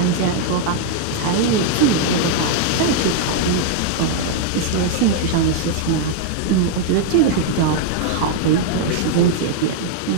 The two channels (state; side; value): different; both; correlation 0.00